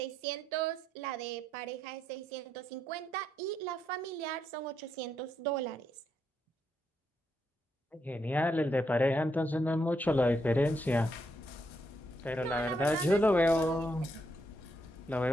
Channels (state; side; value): normal; both; correlation 0.78